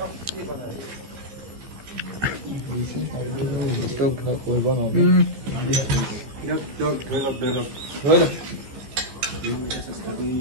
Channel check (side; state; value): left; late; 15 ms